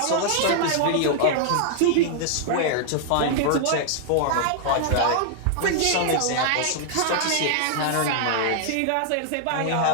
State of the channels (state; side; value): different; both; correlation -0.01